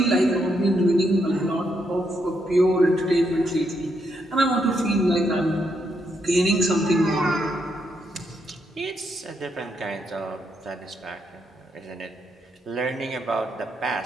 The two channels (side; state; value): both; normal; correlation 0.78